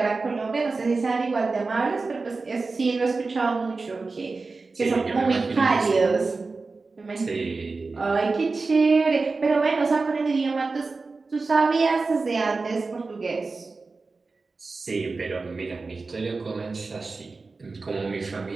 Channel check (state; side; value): quieter; left; 3.9 dB